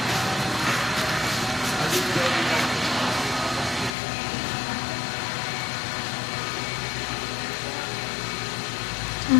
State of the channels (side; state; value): right; drops out; at 4.0 s